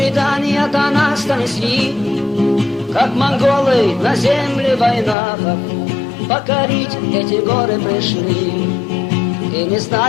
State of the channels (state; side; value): drops out; right; at 5.2 s